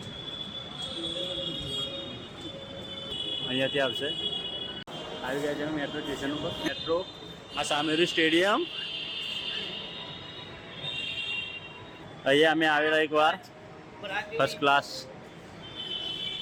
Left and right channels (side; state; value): both; identical; correlation 1.00